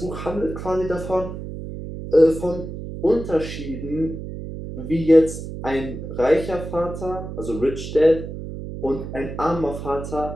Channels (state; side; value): noise; right; hum, 9 dB below the sound